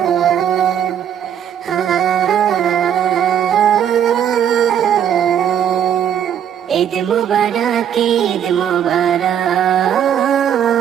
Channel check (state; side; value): quieter; left; 9.2 dB